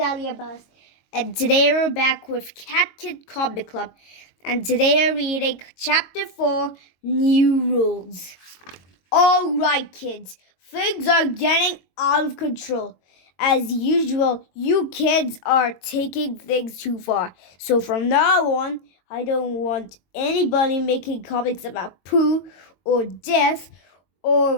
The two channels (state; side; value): late; right; 22 ms